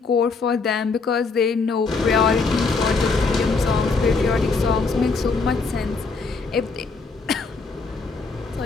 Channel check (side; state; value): right; quieter; 4.3 dB